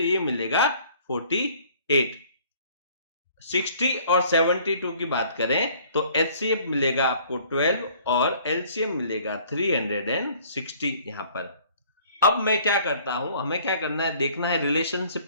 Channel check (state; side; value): inverted; both; correlation -0.56